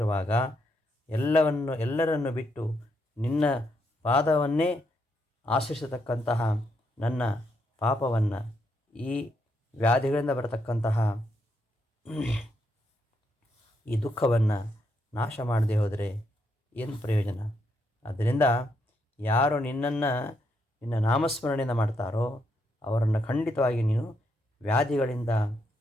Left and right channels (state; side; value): normal; both; correlation 0.78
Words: ಎಲ್ಲರನ್ನು ಬಿಟ್ಟು ನಿನ್ನ ಪಾದವನ್ನೇ ಆಶ್ರಯಿಸತಕ್ಕಂತಹ ನನ್ನ ಪಾಪವನ್ನು, ಈ ವ್ಯಾಧಿಗಳಿಂದ ಬರತಕ್ಕಂತಹ ಈ ದುಃಖವನ್ನು ನಾಶ ಮಾಡದೆ ಹೋದರೆ ಏನು ಪ್ರಯೋಜನ? ಆದ್ದರಿಂದ ಯಾರು ನಿನ್ನ ನಾಮಸ್ಮರಣೆಯಿಂದ ಮಾಡ್ತಾರೋ ಅವರನ್ನು ಖಂಡಿತವಾಗಿ ನೀನು ವ್ಯಾಧಿಗಳಿಂದ